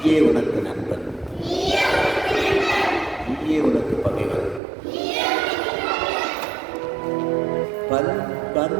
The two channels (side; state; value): left; drops out; at 4.6 s